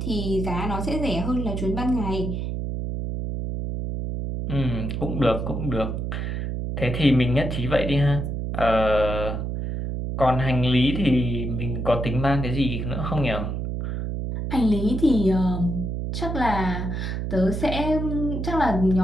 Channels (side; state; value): right; noise; hum, 3 dB below the sound